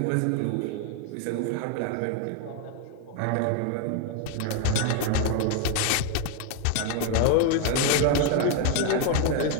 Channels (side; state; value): both; different; correlation 0.01